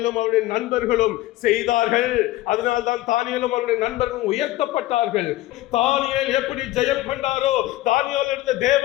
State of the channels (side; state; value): right; quieter; 16.6 dB